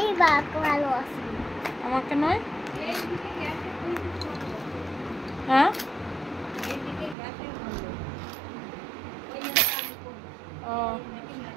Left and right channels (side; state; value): left; drops out; at 7.2 s